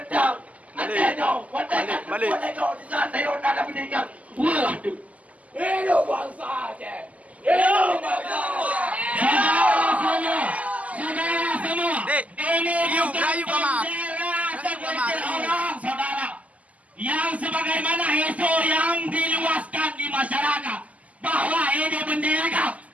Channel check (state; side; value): late; left; 0.072 ms